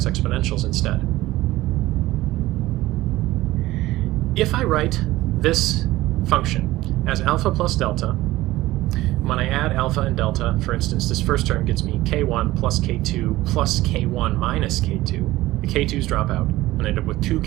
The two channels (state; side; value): quieter; left; 17.2 dB